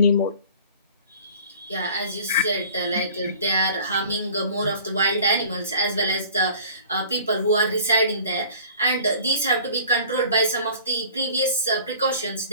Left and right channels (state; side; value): inverted; both; correlation -0.48